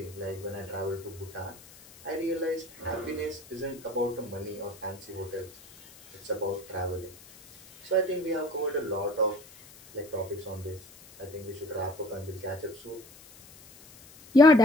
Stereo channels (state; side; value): noise; left; hiss, 22 dB below the sound